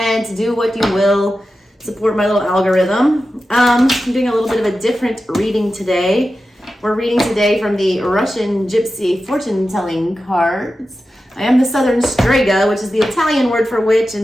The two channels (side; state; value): both; normal; correlation 0.92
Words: do what you will, support my little algorithm. I'm doing a little bit of a different reading today. We're reading today from the Russian Gypsy fortune telling cards. I am the Southern Strega, which is the Italian word for witch,